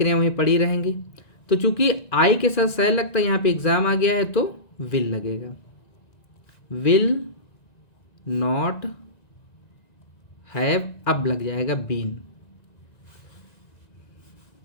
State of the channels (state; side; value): late; right; 1.9 ms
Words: वहीं पड़ी रहेंगी। तो चूंकि आई के साथ सह लगता है, यहाँ पे एग्जाम आ गया है तो विल लगेगा, विल नॉट हैव, अब लग जाएगा been,